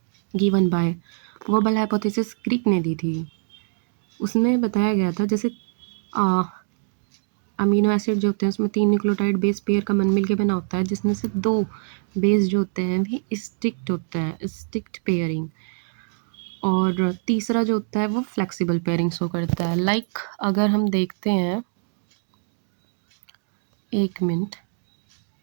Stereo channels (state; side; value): silent; left; digital silence